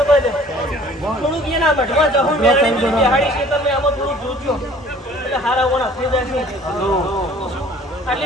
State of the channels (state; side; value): normal; both; correlation 0.52